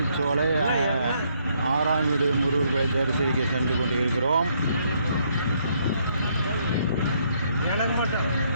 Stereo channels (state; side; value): inverted; both; correlation -0.71